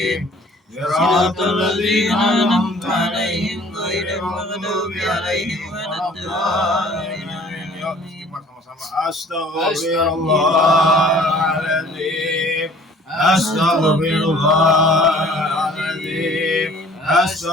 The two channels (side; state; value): both; normal; correlation 0.52